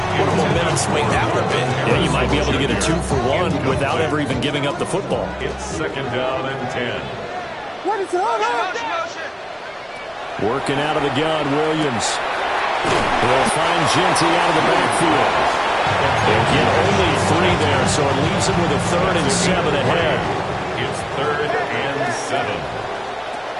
What a momentum swing that would have been. Yeah, you might be able to get a 2-for-1 without ever even giving up the football. It's 2nd down and 10. What is all that? Working out of the gun, Williams. He'll find Genty out of the backfield. They'll get only 3 there, so it leaves him with a 3rd and 7 ahead. It's 3rd and 7.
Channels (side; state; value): both; identical; correlation 1.00